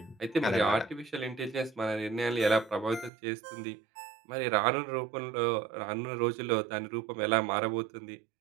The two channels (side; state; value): left; drops out; at 3.1 s